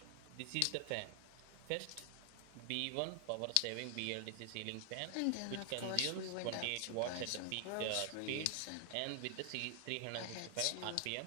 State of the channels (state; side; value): different; both; correlation 0.00